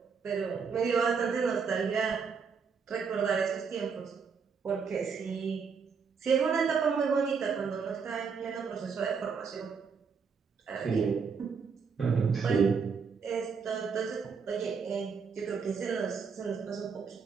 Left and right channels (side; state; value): left; quieter; 5.8 dB